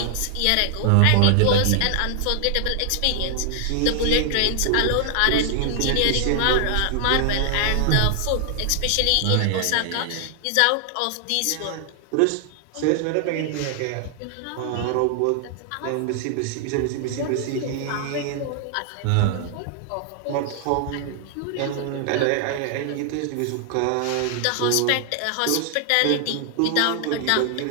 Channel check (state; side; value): different; both; correlation 0.00